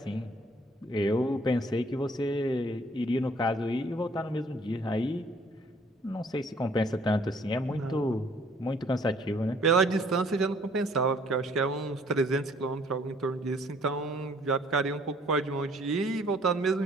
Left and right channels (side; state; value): both; normal; correlation 0.60